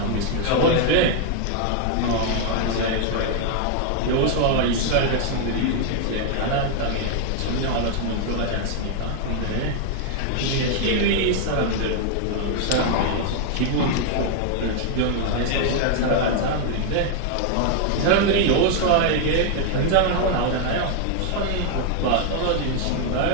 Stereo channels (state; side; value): different; both; correlation 0.00